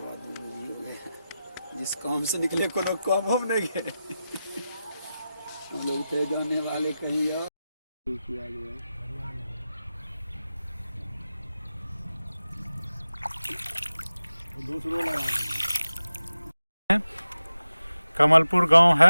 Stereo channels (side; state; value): both; inverted; correlation -0.93